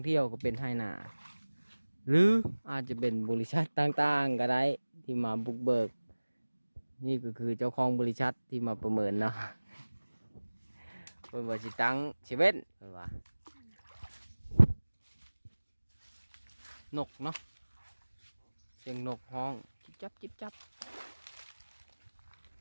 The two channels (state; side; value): inverted; both; correlation -1.00